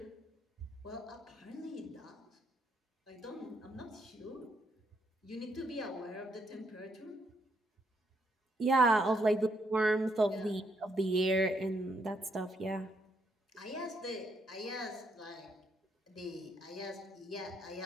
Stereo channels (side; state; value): both; normal; correlation 0.75